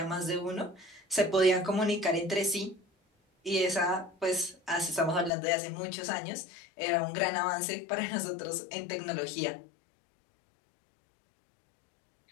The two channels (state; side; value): drops out; right; at 5.3 s